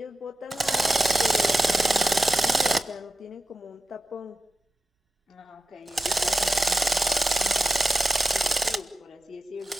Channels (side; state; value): both; normal; correlation 0.93